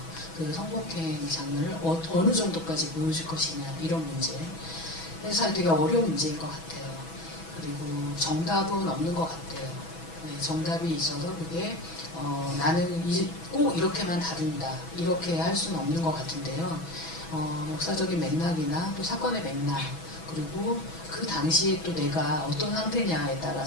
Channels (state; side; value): late; right; 6.1 ms